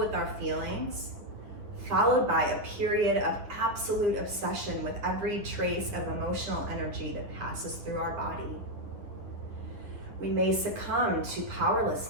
our feelings, followed by a period of absolute obsession with every trace of emotional energy that passes through our body. We may succumb to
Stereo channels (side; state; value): left; late; 10 ms